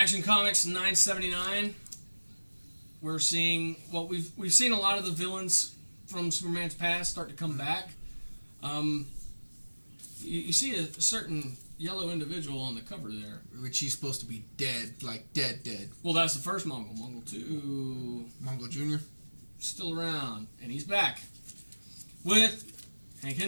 Comics 979. We're seeing we've seen a lot of the villains from Superman's past start to come back. You see a certain yellow individual on the cover there. Which he's supposed to be dead, like dead. Well, that's the first Mongol. Mongol 2 Mongo Jr. still around, and he's back with Hank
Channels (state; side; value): inverted; both; correlation -1.00